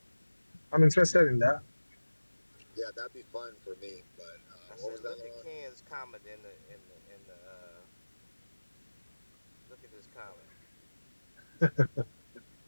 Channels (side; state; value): both; inverted; correlation -1.00